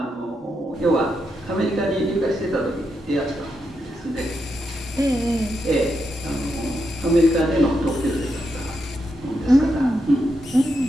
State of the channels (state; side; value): normal; both; correlation 0.84